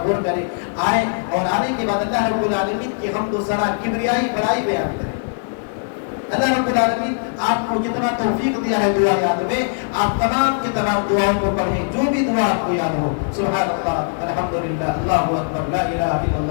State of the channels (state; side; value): silent; right; 56 dB below the other